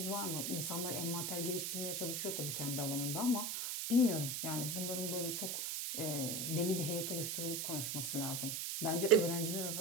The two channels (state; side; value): noise; right; hiss, 1 dB below the sound